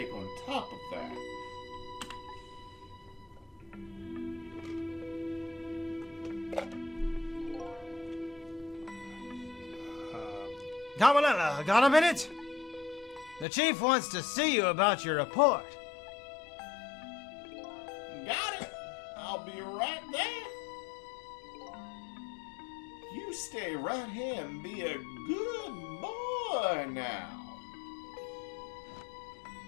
on top of that. Camarilla, got a minute? The chief wants to see you about your report. Got it! I'll be right there. You stay right here and be a good boy now.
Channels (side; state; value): right; drops out; at 13.5 s